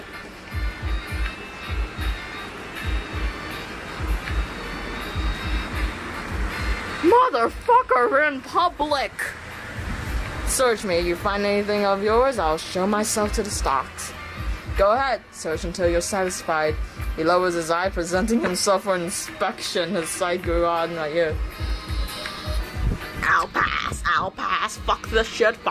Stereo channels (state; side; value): identical; both; correlation 1.00